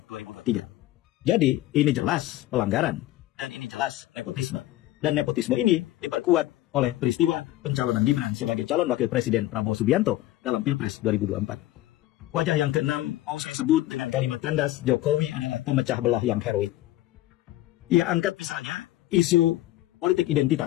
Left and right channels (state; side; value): quieter; right; 15.7 dB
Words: 2023. Jadi ini jelas pelanggaran dan ini jelas nepotisme. Dan nepotisme ini diperkuat oleh peristiwa pencalonan Gibran sebagai calon wakil presiden Prabowo Subianto dalam Pilpres 2024. Wajah yang keenam mau saya sebut dengan kalimat tandas, Jokowi adalah pemecah belah yang heroik. Ia angkat misalnya isu politik